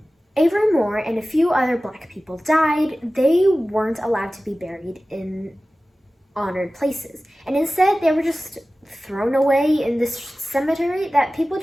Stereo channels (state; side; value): normal; both; correlation 0.96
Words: Avery Moore and a few other black people died, they weren't allowed to be buried in honored places. And instead, they were just thrown away in this cemetery that people